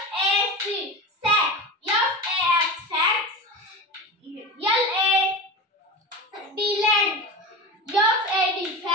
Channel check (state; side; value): normal; both; correlation 0.28